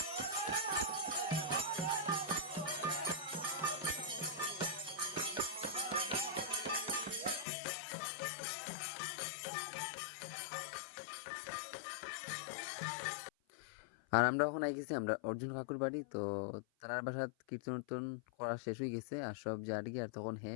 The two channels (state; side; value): drops out; right; at 7.5 s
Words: আর আমরা এখন আই গেছি আমরা অর্জুন কাকুর বাড়ি। তো তার বাসাত কীর্তন উর্তন করা শেষ হয়ে গেছে আর সব জারি। আর তখন